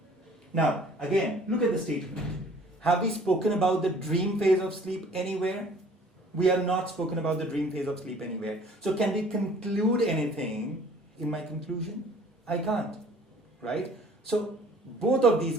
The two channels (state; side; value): normal; both; correlation 0.53